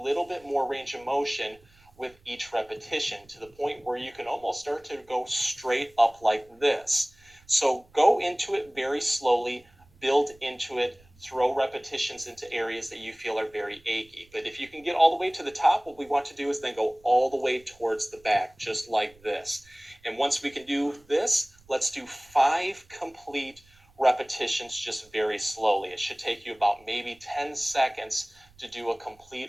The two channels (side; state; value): right; noise; rumble, 29 dB below the sound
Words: bit more range of motion with each repetition, to the point where you can almost start to go straight up like this. So go into it very slowly, build into it, throw repetitions into areas that you feel are very achy. But if you can get all the way to the top, what we want to do is then go all the way towards the back, just like this. And once we can do this, let's do 5 complete repetitions just very slowly. It should take you about maybe 10 seconds to do a